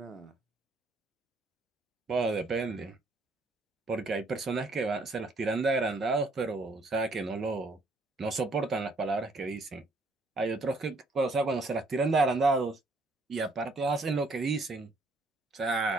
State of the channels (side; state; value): left; quieter; 3.0 dB